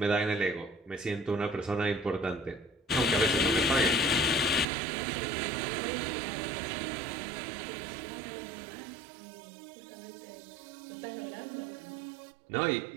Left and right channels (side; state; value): left; drops out; at 4.7 s